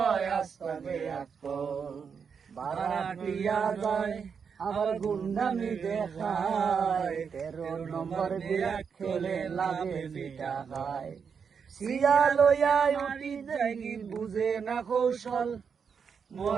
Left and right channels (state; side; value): quieter; left; 6.4 dB